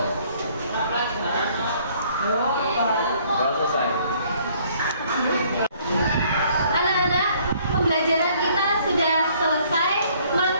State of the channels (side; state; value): both; inverted; correlation -0.61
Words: Doa selesai. Anak-anak, pembelajaran kita sudah selesai.